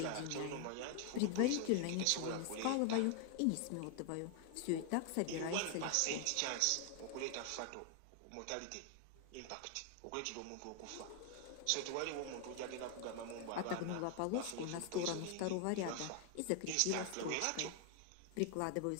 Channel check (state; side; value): different; both; correlation 0.00